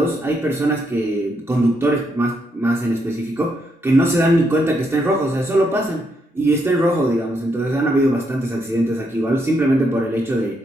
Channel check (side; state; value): both; normal; correlation 0.77